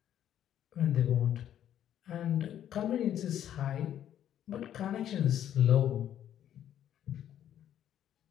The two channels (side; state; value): right; quieter; 10.7 dB